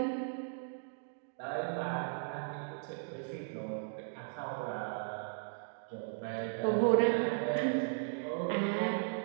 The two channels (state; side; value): silent; left; digital silence